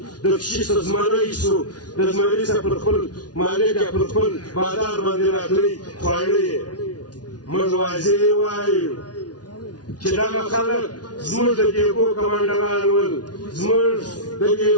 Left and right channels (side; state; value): right; late; 0.69 ms